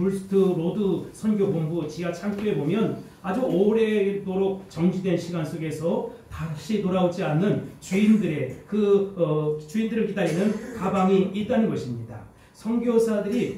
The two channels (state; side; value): identical; both; correlation 1.00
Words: 로드 선교본부 지하 창고에 보면 아주 오래도록 정지된 시간 속에서 다시 돌아오지 않는 주인들의 주인들을 기다리는 가방이 있다는 것입니다.